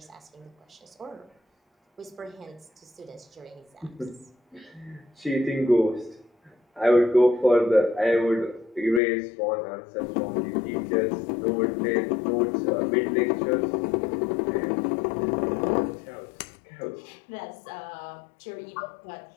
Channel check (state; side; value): drops out; right; at 9.0 s